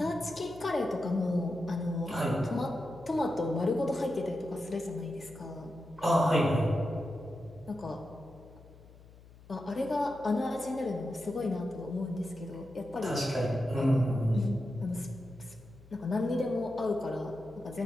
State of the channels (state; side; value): noise; left; hum, 22 dB below the sound